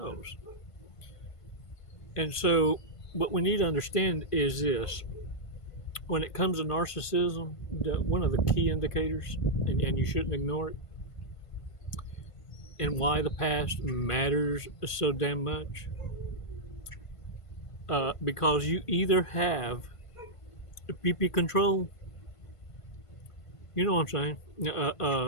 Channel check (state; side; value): late; right; 1.5 ms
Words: And so what we need to understand is this. When it comes to narcissism, one of the key indicators, and you shouldn't ignore it, and why the past matters so damn much, because you either have PP control, you know what I'm